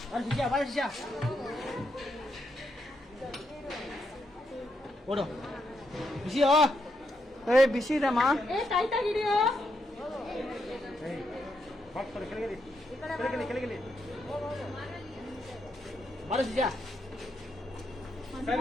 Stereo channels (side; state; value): both; normal; correlation 0.80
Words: ಶಿಷ್ಯ ಬಾ ಶಿಷ್ಯ ಓಡು ಬಿಸಿಯೋ ಏ ಬಿಸಿ ಇದಮ್ಮ. ए टाइट ಆಗಿದೆಯೋ? ಕೆಳಗೆ ಬಾರು ಶಿಷ್ಯ